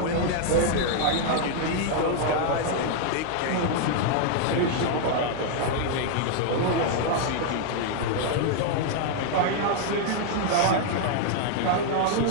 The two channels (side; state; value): both; different; correlation 0.00